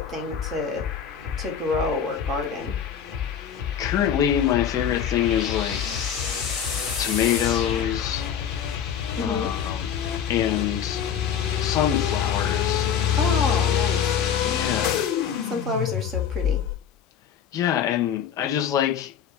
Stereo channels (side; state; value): right; quieter; 8.3 dB